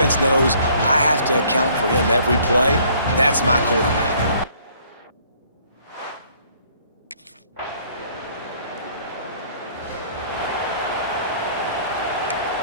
knows I have to account for him every play. That's my quarterback.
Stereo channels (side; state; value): both; inverted; correlation -0.60